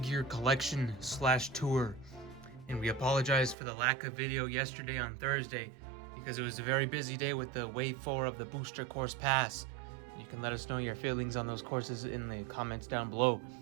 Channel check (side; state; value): left; drops out; at 3.6 s